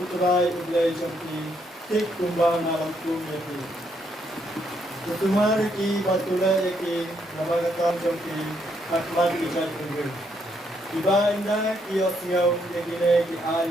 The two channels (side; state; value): both; normal; correlation 0.74